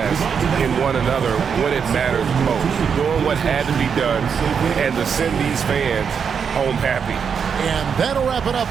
in one another when it matters most. Doing what had to be done and to send these fans home happy. And that'll wrap it up,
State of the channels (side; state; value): left; quieter; 6.7 dB